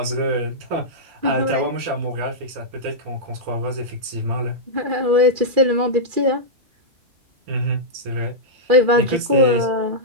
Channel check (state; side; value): late; left; 2.4 ms